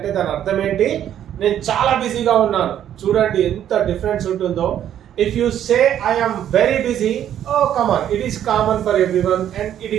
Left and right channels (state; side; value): quieter; left; 10.5 dB